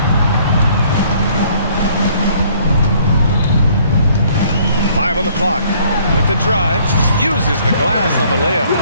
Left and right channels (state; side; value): inverted; both; correlation -0.61